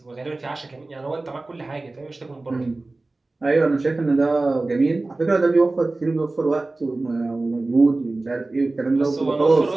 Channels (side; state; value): left; quieter; 3.2 dB